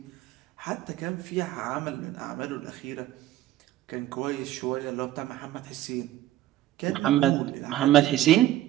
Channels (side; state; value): left; quieter; 14.1 dB